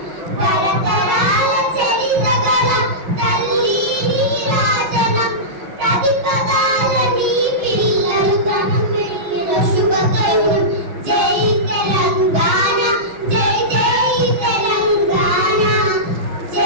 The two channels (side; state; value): left; late; 6.3 ms